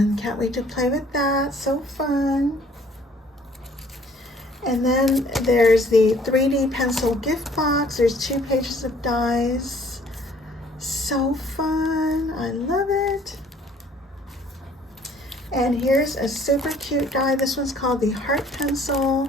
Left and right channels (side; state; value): both; normal; correlation 0.58